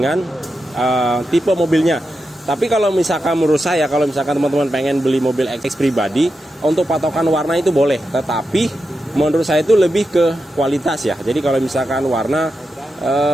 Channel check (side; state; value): both; normal; correlation 0.88